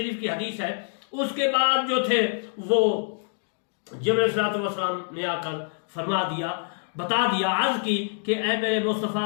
की हदीस है, उसके बाद जो थे वो जिब्रील अलैहिस्सलाम ने आकर फरमा दिया, बता दिया, अर्ज की कि ऐ मेरे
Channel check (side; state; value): right; silent; digital silence